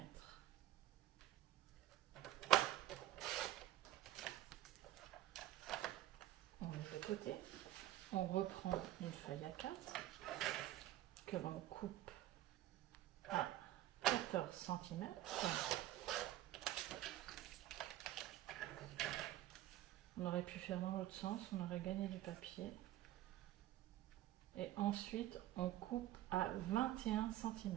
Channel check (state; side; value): quieter; left; 14.2 dB